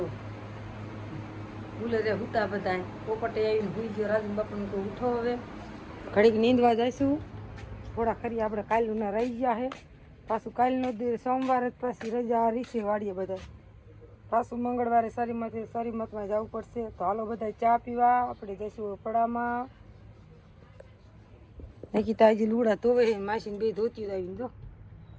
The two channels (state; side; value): identical; both; correlation 1.00